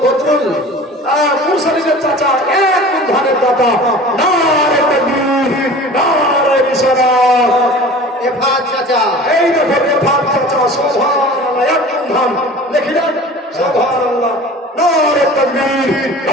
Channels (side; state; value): both; normal; correlation 0.41